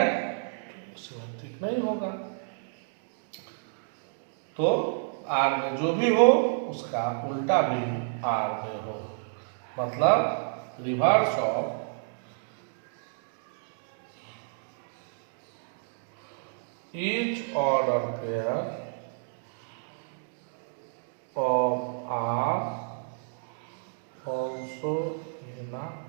तो सिमेट्रिक नहीं होगा। तो आर में जो भी हो उसका उल्टा भी आर में हो, मतलब reverse of each order pair of R also in a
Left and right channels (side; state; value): left; silent; digital silence